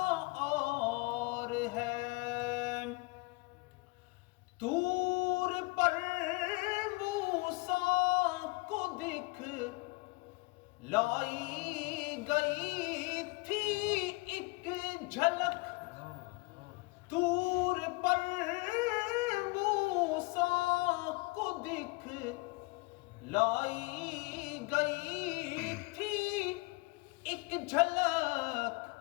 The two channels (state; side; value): quieter; right; 26.3 dB